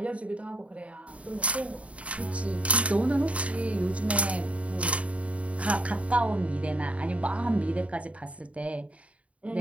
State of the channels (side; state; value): left; late; 0.065 ms